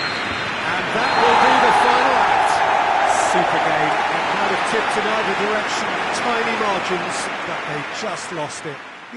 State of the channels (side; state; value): both; identical; correlation 1.00